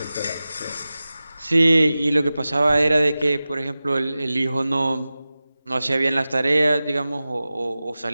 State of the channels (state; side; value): inverted; both; correlation -0.96